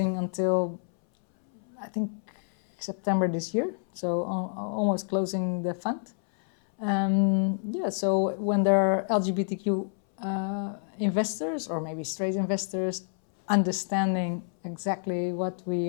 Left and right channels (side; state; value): right; silent; 59 dB below the other